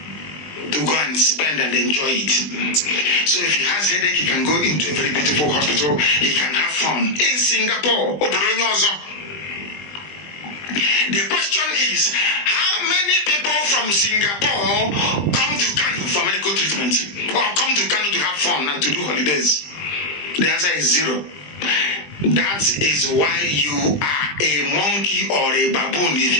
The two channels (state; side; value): late; right; 20 ms